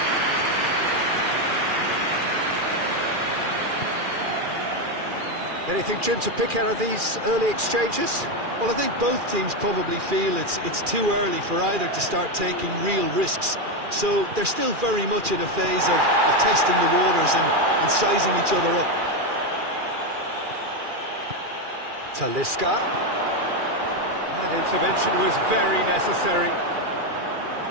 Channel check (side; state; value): left; late; 2.4 ms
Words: Anything, Jim, to pick out of these early exchanges? Well, I think both teams probably feel it's too early for either to start taking real risks. So they're still very much in a phase of testing the waters and sizing each other up. Talisca. That intervention was very necessary.